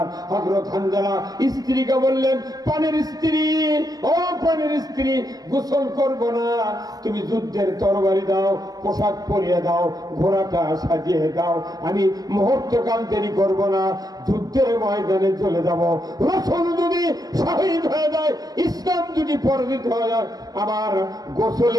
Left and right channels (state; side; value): late; left; 0.18 ms